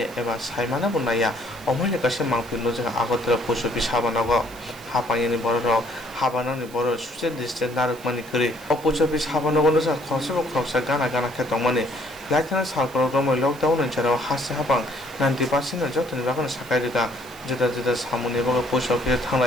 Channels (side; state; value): right; noise; hiss, 21 dB below the sound